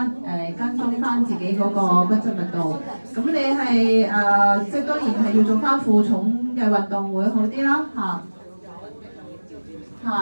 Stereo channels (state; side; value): inverted; both; correlation -1.00